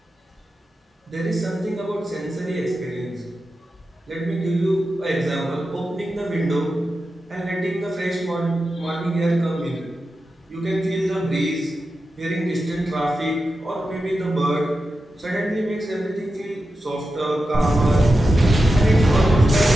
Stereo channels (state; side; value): normal; both; correlation 0.91